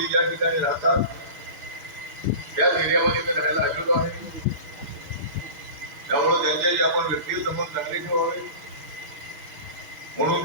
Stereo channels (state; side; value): late; left; 6.5 ms